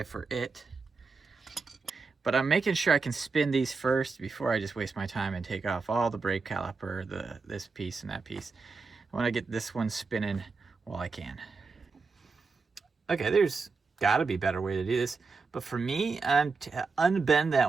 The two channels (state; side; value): quieter; left; 4.4 dB